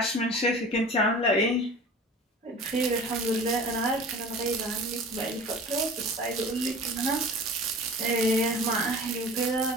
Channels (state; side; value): normal; both; correlation 0.40